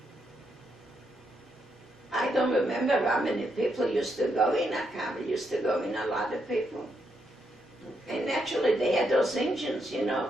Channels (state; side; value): normal; both; correlation 0.79